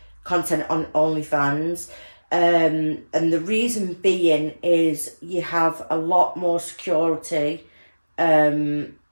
content on OnlyFans. And the reason being is you have a lot more security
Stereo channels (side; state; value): both; inverted; correlation -1.00